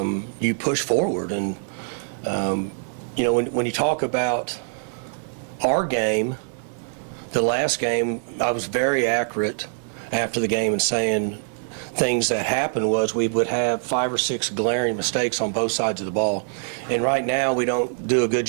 you push forward. And you know, when you talk about our game, the last game, I was very accurate after the game in saying things that happened was we would have 5 or 6 glaring mistakes on both sides of the ball. And right now we don't do a good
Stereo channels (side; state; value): left; silent; digital silence